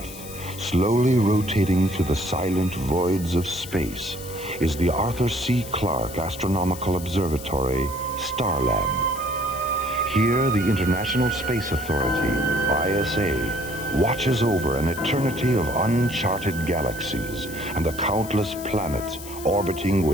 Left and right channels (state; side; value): noise; left; hiss, 14 dB below the sound